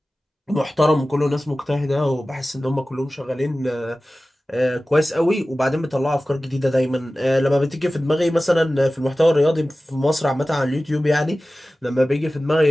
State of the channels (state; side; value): normal; both; correlation 0.96